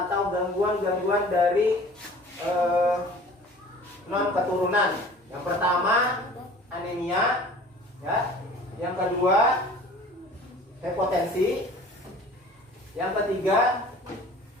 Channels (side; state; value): both; normal; correlation 0.46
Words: atau gangguan-gangguan dari non keturunan. Yang pertama anemia, ya. Yang kedua hipotensi. Yang ketiga